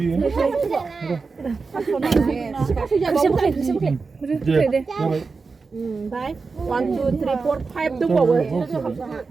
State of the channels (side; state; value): left; quieter; 4.5 dB